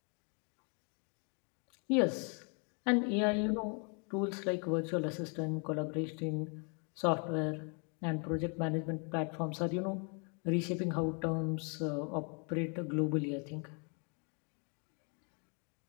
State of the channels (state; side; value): quieter; right; 37.9 dB